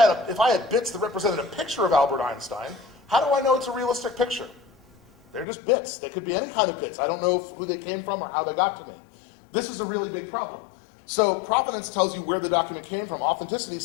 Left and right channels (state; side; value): drops out; right; at 5.5 s